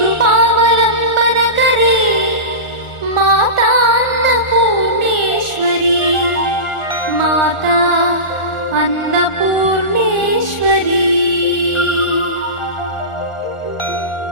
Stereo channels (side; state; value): right; late; 1.4 ms